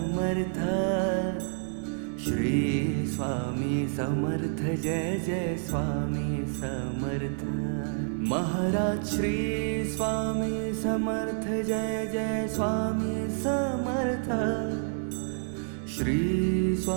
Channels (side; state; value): left; silent; 57 dB below the other